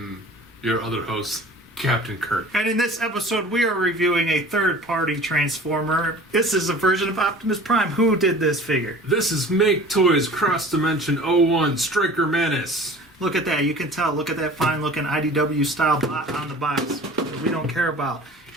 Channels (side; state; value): both; normal; correlation 0.43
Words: your other host, Captain Kirk. And in this episode, we are reviewing a third-party Transformer. This is a version of Optimus Prime. Who did this figure? This is MakeToys Cross Dimension 01 Striker Manus. Look at that. You can tell. Look at that fine-looking IDW style bot on the box that we don't care about.